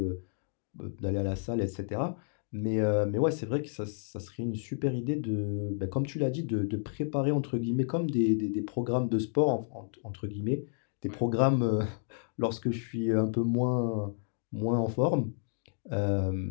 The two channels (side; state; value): right; silent; digital silence